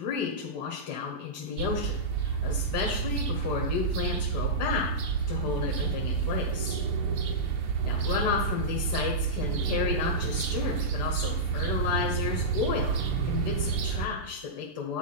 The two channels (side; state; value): left; late; 6.8 ms